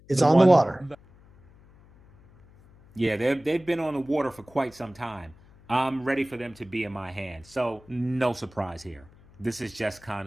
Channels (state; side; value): noise; left; hum, 26 dB below the sound